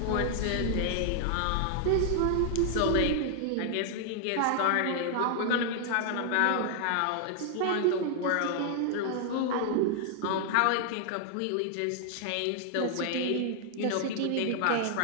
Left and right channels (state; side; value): different; both; correlation 0.00